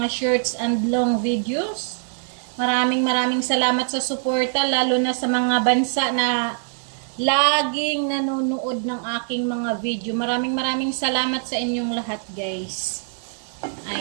shorts and long videos. Maraming salamat sa suporta, lalo na sa mga bansa na laging nanonood ng aking mga video. Maraming salamat sa inyong lahat, guys.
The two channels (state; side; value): silent; left; 63 dB below the other